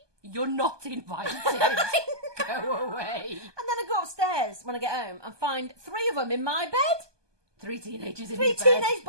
You're not invited. Go away. And then I go upstairs when I get home and find 3 of them in my bed. 3 teenagers in 3 your bed. teenage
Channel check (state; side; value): late; left; 1.2 ms